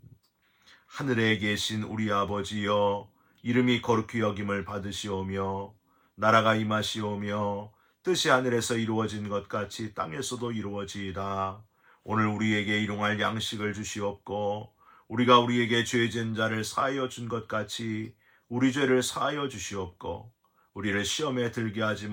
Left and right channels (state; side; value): identical; both; correlation 1.00